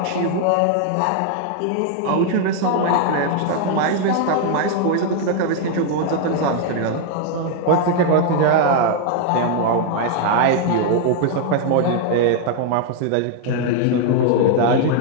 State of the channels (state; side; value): different; both; correlation 0.00